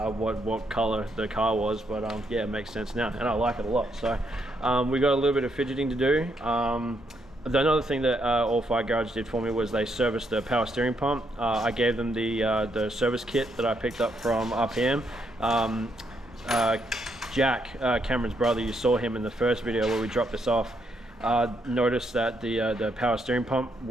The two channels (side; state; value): both; normal; correlation 0.76